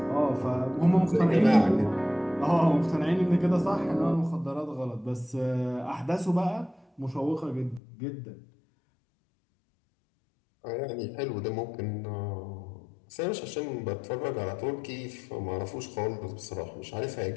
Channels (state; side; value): drops out; right; at 7.8 s